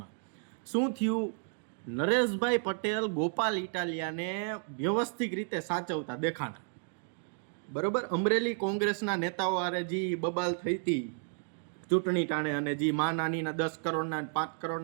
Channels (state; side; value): silent; left; 56 dB below the other